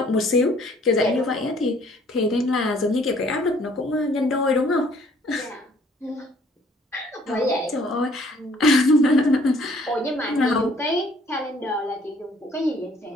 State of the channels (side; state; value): both; normal; correlation 0.60